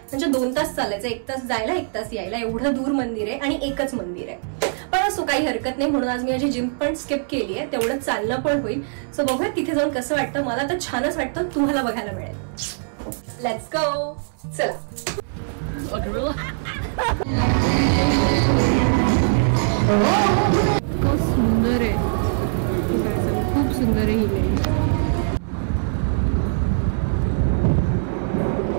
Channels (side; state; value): left; silent; 64 dB below the other